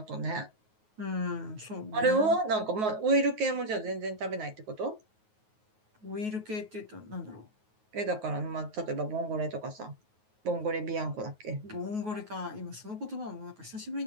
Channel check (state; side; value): late; left; 9.4 ms